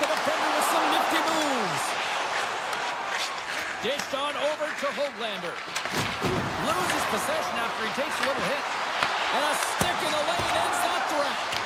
the defender with some nifty moves. Dished on over to Höglander. Loses possession after he takes a little hit. And a stick in the lane ends that threat.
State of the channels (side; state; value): both; identical; correlation 1.00